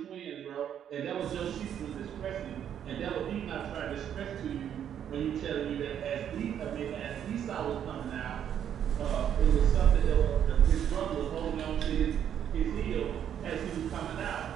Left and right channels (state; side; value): quieter; left; 9.4 dB